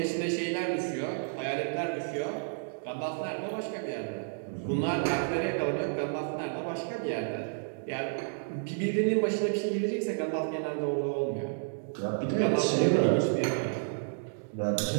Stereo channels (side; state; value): left; silent; digital silence